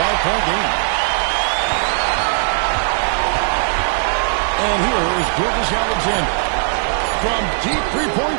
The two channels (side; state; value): left; silent; digital silence